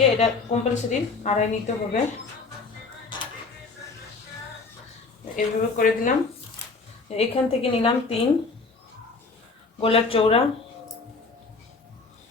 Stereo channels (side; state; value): right; quieter; 4.1 dB